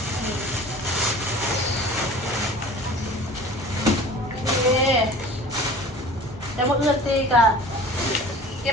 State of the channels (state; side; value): normal; both; correlation 0.42